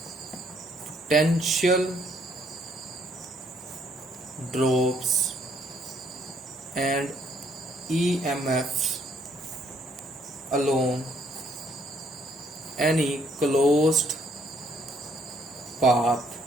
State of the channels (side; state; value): both; normal; correlation 0.66